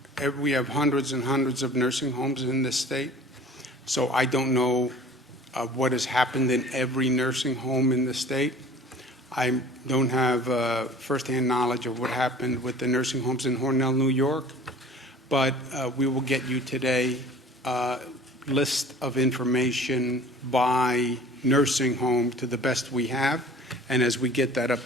We have hundreds and hundreds of nursing homes in this state. So I don't know what has happened in every nursing home in the state. I don't have firsthand knowledge of what happened with the nursing homes in Hornell, New York. But we will get you today a list of information by nursing home to the best we have. And as we get that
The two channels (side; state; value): both; normal; correlation 0.46